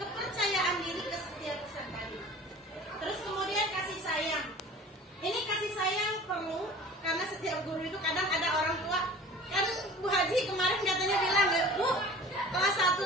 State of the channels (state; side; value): normal; both; correlation 0.42